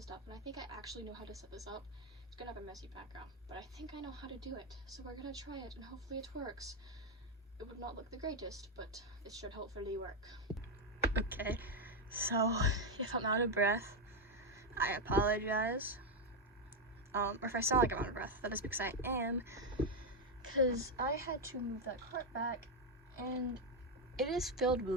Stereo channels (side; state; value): both; normal; correlation 0.05